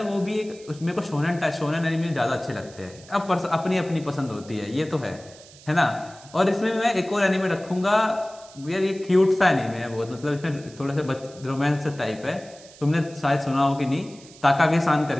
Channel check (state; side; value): noise; right; hiss, 22 dB below the sound